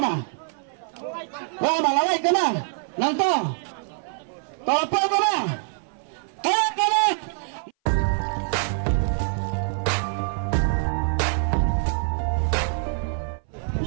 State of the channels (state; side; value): silent; left; 59 dB below the other